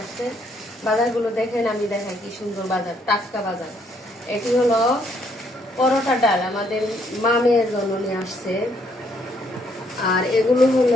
আসছে। বাজারগুলো দেখেন, আমি দেখাই কি সুন্দর বাজার, টাটকা বাজার। এটি হলো পরোটা ডাল, আমাদের মামের জন্য নিয়ে আসছে। আর এগুলো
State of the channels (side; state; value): both; normal; correlation 0.69